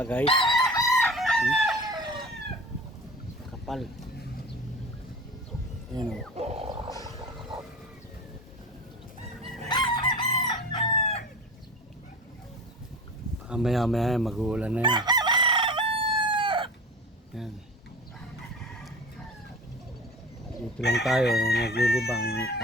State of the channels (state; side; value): normal; both; correlation 0.35